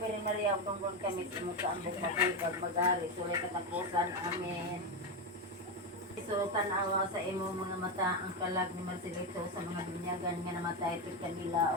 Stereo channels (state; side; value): normal; both; correlation 0.12